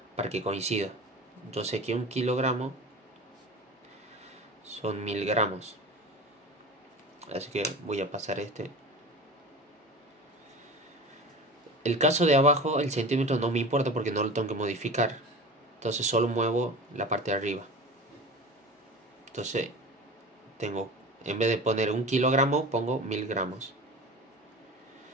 para que coincida. Yo sé que 1 kilogramo son 1000 gramos, así que voy a pasar este. El caso de abajo, el centímetro no me importa porque no lo tengo que modificar, entonces solo muevo la parte de arriba. Entonces tengo, en vez de poner 1 kilogramo, pongo 1000 gramos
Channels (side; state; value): both; normal; correlation 0.33